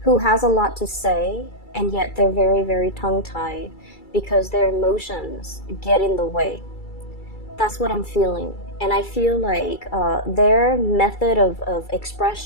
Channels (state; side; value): late; right; 2.3 ms